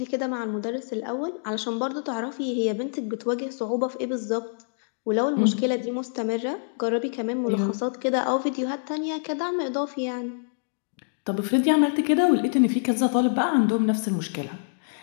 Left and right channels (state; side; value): silent; right; digital silence